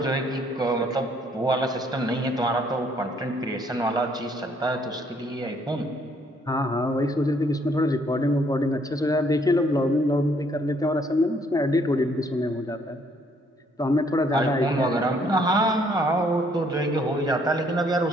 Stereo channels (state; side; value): normal; both; correlation 0.66